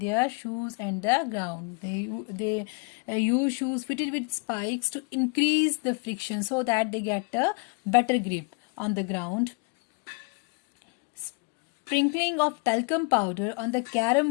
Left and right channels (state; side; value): quieter; right; 32.6 dB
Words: shoes and the ground. They use shoes fitted with spikes to increase the friction so that they get a better grip on the ground. Sprinkling of talcum powder on the